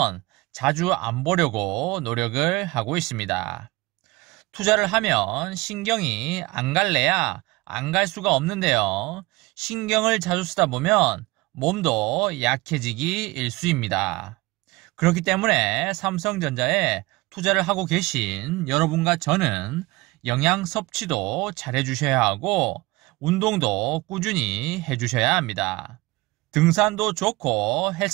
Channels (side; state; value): left; quieter; 22.1 dB